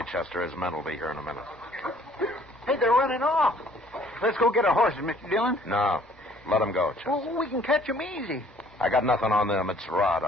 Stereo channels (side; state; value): both; normal; correlation 0.58